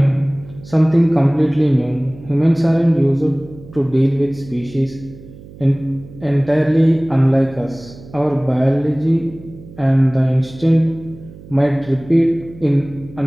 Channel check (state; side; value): noise; right; hum, 19 dB below the sound